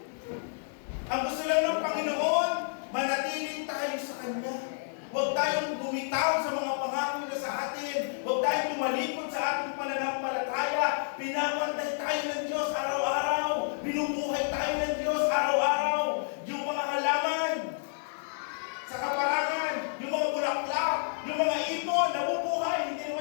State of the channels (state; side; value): silent; right; digital silence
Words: Ang gusto lang ng Panginoon, manatiling tayo sa Kanya. Huwag tayong bumitaw sa mga pangako na sa atin. Huwag tayong tumalikod sa ating pananampalataya. Pinapantay tayo ng Diyos araw-araw. Binubuhay tayo ng Diyos araw-araw. Yung mga halaman sa kaparangan, yung mga bulaklak, yung mga ibon, nabubuhay, hindi